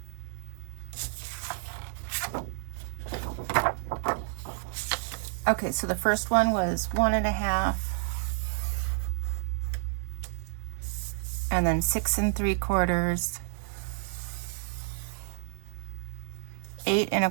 Okay, so the first one was 1.5, and then 6 3/4, 8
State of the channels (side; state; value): left; silent; 58 dB below the other